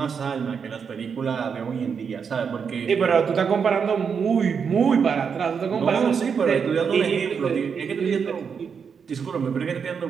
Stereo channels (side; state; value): left; quieter; 6.4 dB